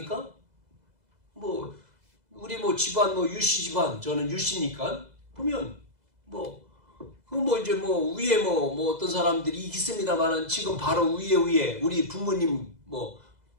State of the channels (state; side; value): late; left; 2.0 ms